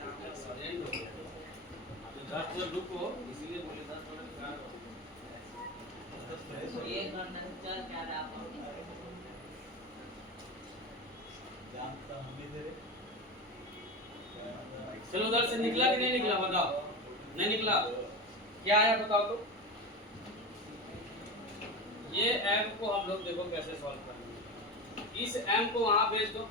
हो गया। अभी 10 मिनट रुको, इसीलिए बोले 10 मिनट क्या करो। ये घंटा से चल क्या रहा है चलो उधर से निकला कि नहीं निकला बताओ। नहीं निकला, क्या आया बताओ तो। ये m को हम लोग देखो कैसे सॉल्व करेंगे। इस m को वहां भेज दो,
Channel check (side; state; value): both; normal; correlation 0.23